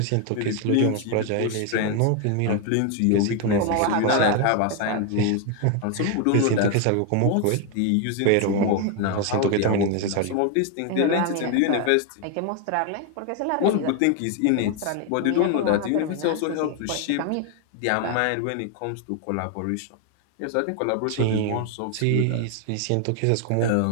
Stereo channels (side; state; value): both; different; correlation 0.01